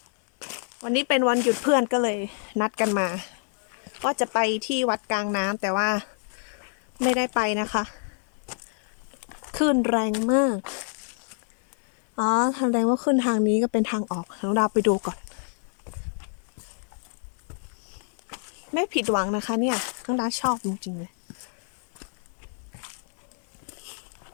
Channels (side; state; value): right; silent; 60 dB below the other